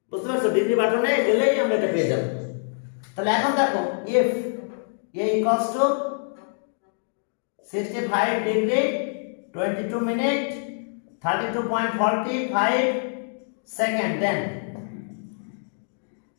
বুঝতে পারছো? ডিগ্রি বাটনে গেলেই আমরা এটা পেয়ে যাবো। তাহলে এখন দেখো, if a equals to 65 degree 22 minute 32.45 second,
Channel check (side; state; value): right; silent; digital silence